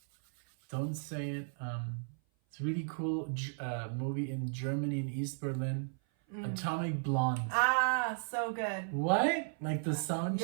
don't say it. It's a really cool movie in Germany, in East Berlin. Atomic Blonde. Ah, so good. What? Like the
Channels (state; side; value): silent; left; 54 dB below the other